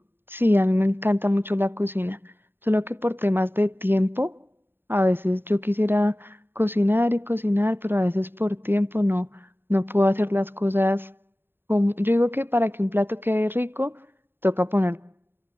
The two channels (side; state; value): left; late; 0.10 ms